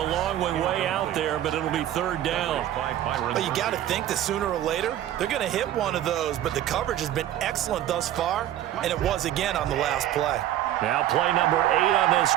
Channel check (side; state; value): left; quieter; 12.3 dB